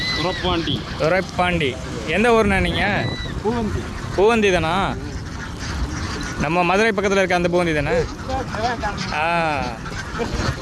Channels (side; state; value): both; identical; correlation 1.00